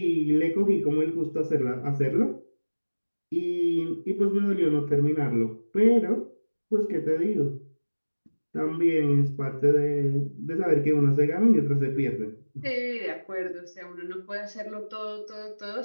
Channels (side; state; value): both; inverted; correlation -1.00